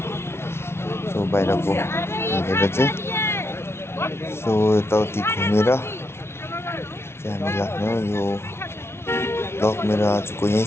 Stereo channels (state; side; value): late; right; 0.12 ms